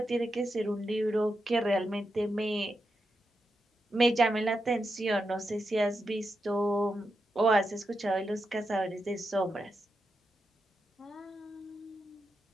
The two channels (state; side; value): normal; both; correlation 0.87